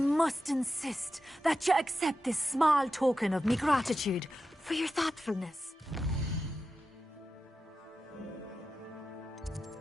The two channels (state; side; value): normal; both; correlation 0.91